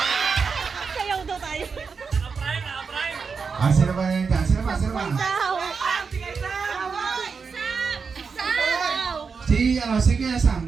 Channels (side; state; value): left; quieter; 5.4 dB